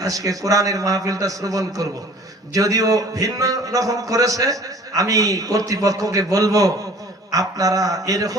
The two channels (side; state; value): both; normal; correlation 0.49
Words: আজকে কোরআনের মাহফিলটা শ্রবণ করব। যদিও ভিন্ন রকম করেছে, আমি কর্তৃপক্ষকে বলবো আপনারা